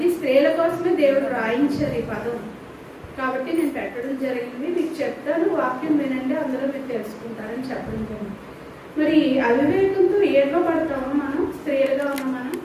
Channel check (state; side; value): identical; both; correlation 1.00